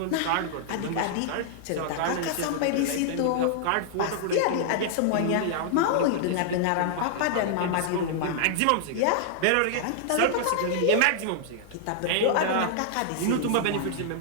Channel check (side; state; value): both; different; correlation -0.01